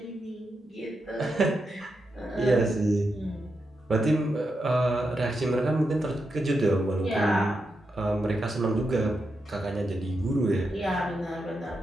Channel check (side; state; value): both; normal; correlation 0.86